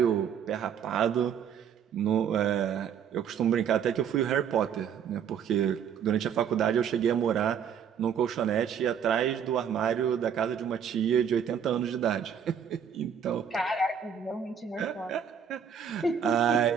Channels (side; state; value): left; quieter; 7.8 dB